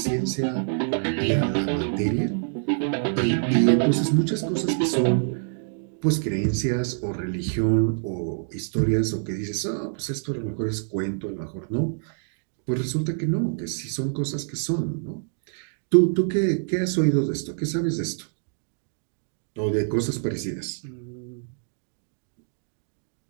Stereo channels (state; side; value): silent; left; digital silence